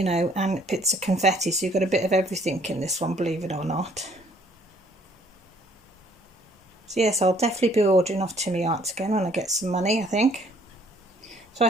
know, and bits of confetti, so you've got a bit of everything in this one, believe it or not. So yes, I'll definitely be ordering off Tinmi Art again when I get some money, I think. So I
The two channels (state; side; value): normal; both; correlation 0.61